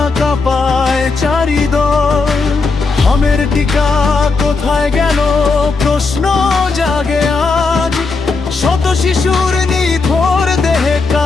কাঁপায় চারিদল। হামের টিকা কোথায় গেল প্রশ্ন জাগে আজ। শত শিশুর নিথর দেহে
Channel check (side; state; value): right; quieter; 4.2 dB